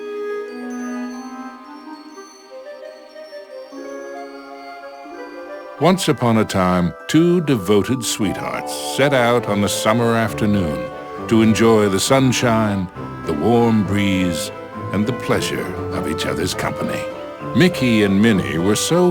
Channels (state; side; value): identical; both; correlation 1.00